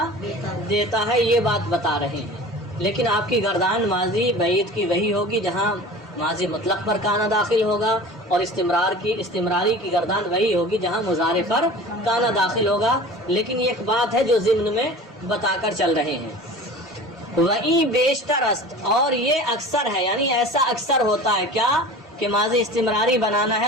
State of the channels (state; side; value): normal; both; correlation 0.39